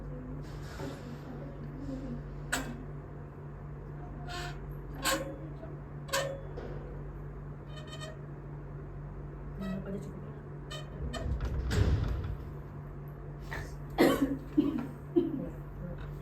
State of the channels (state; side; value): identical; both; correlation 1.00